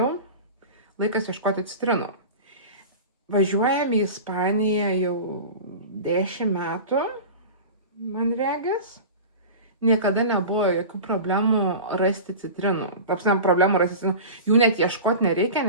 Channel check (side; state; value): both; inverted; correlation -0.32